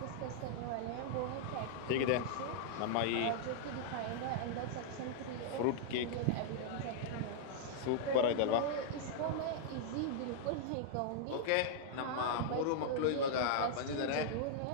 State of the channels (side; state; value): both; different; correlation -0.01